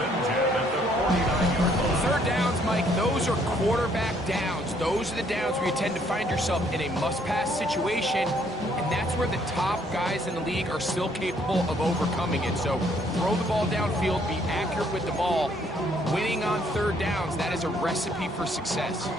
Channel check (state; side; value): normal; both; correlation 0.66